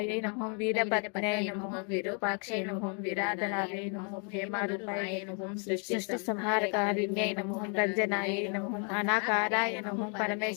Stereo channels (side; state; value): right; quieter; 39.6 dB